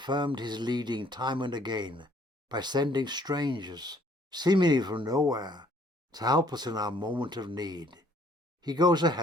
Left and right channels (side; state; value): both; normal; correlation 0.62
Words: his leading time and again by sending strangers, seemingly from nowhere, to help us in our moment of need. He goes